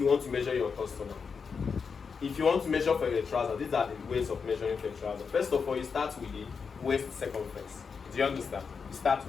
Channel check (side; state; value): right; quieter; 5.7 dB